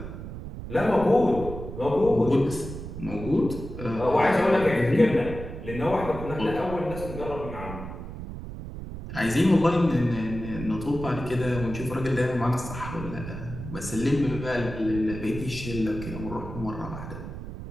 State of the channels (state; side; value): noise; right; rumble, 9 dB below the sound